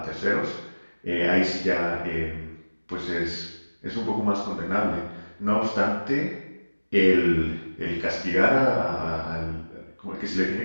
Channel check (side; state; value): both; inverted; correlation -1.00